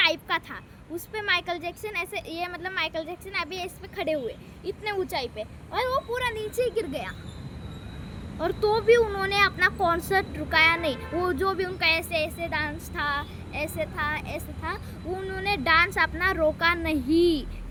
का था, उस पे माइकल जैक्सन ऐसे, ये मतलब माइकल जैक्सन अभी इस पे खड़े हुए इतने ऊंचाई पे, और वो पूरा नीचे ही गिर गया, और तो भी उन्होंने अपना कॉन्सर्ट रुकाया नहीं। वो जो भी उनका ऐसे ऐसे डांस था, ऐसे था, ऐसे था, उन्होंने डांस अपना रोका नहीं,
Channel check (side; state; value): both; identical; correlation 1.00